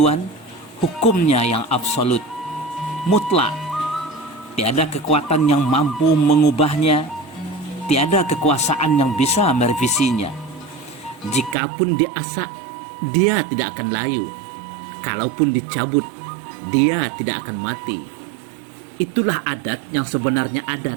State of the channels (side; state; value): left; drops out; at 11.6 s